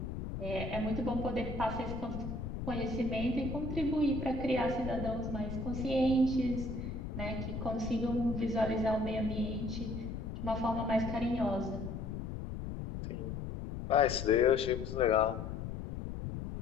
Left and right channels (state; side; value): noise; left; rumble, 6 dB below the sound